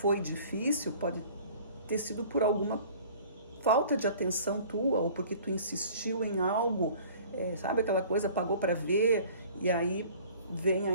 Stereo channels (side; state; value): both; inverted; correlation -0.49